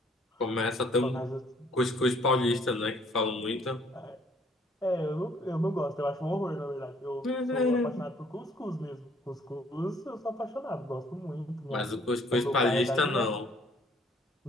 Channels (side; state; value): both; normal; correlation 0.62